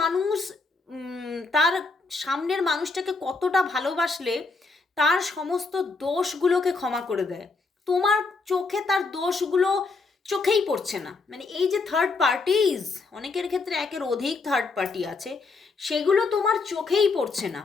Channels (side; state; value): right; quieter; 4.0 dB